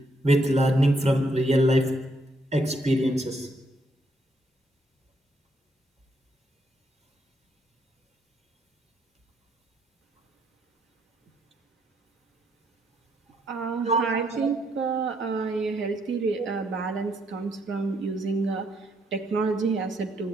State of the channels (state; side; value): normal; both; correlation 0.73